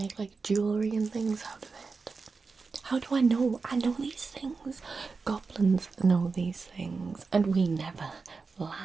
like jewelry and things out of it. How do I know? I know these things. Goblins know these things, and we never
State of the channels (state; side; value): quieter; left; 4.5 dB